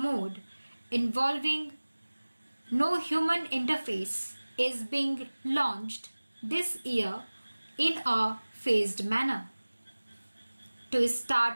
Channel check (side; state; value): both; inverted; correlation -1.00